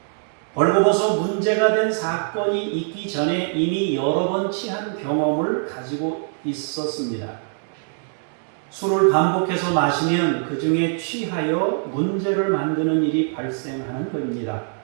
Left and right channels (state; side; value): silent; left; 60 dB below the other